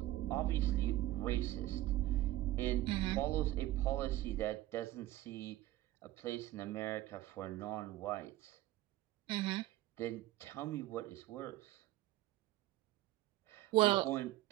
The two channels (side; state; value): left; quieter; 15.9 dB